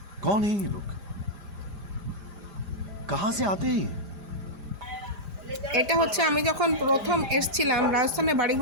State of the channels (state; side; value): late; left; 5.0 ms